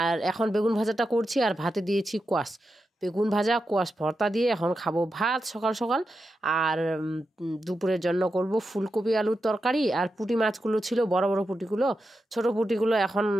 এখন বেগুন ভাজাটা করছি, আর ভাতে দিয়েছি কোয়াশ। বেগুন ভাজা কোয়াশ ভর্তা দিয়ে এখন খাবো ভাত সকাল সকাল। আর দুপুরের জন্য করব ফুলকপি আলুর তরকারি। আর পুঁটি মাছগুলো ছিল, বড় বড় পুঁটিগুলো, ছোট পুঁটিগুলো এখন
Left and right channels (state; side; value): normal; both; correlation 0.88